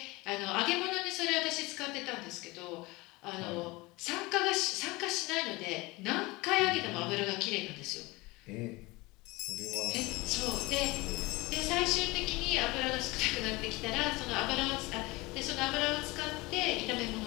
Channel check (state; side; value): quieter; right; 22.7 dB